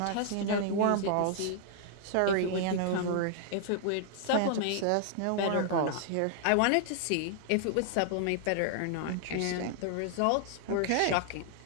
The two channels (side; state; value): both; different; correlation -0.01